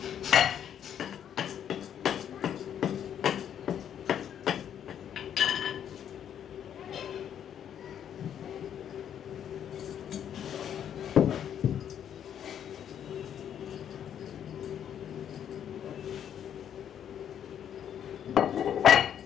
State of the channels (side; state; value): right; quieter; 9.3 dB